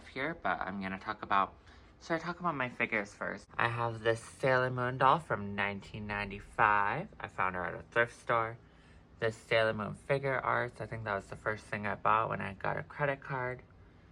here, but I'm gonna talk about, should I talk about my figures first? I have this Sailor Moon doll from 1995. I found her at a thrift store. This Sailor Moon figure arts, I think that was the first thing I bought when I got a credit card.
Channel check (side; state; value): both; identical; correlation 1.00